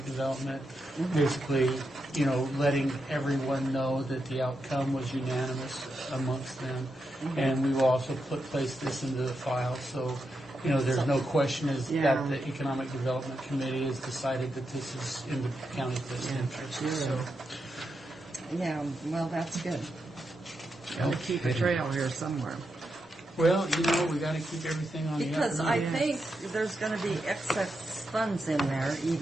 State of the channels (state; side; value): normal; both; correlation 0.85